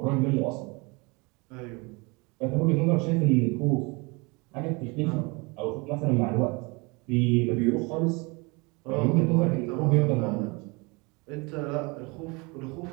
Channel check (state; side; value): quieter; left; 27.9 dB